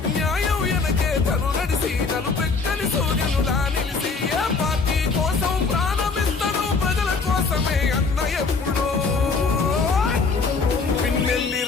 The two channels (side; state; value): right; quieter; 4.5 dB